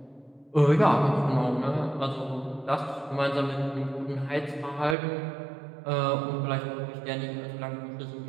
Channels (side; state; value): left; drops out; at 5.0 s